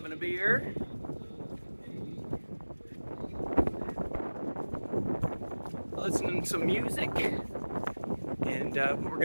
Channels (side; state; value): both; inverted; correlation -1.00